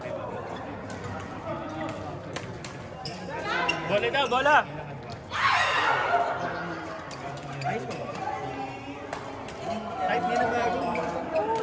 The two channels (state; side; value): identical; both; correlation 1.00